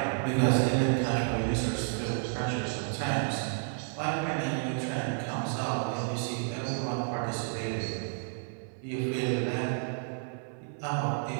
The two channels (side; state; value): left; silent; 57 dB below the other